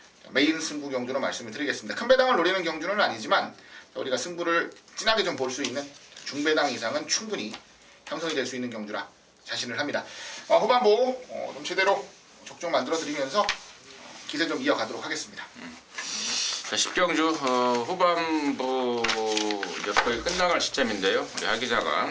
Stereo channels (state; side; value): identical; both; correlation 1.00